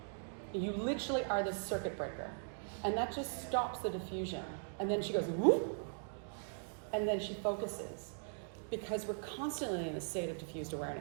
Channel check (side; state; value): left; silent; digital silence